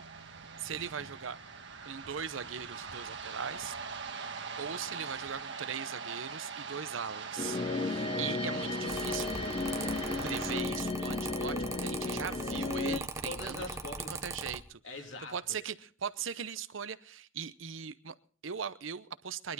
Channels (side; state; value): both; normal; correlation 0.19